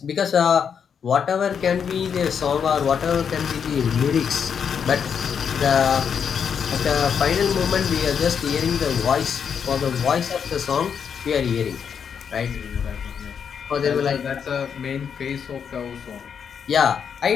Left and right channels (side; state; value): right; quieter; 7.2 dB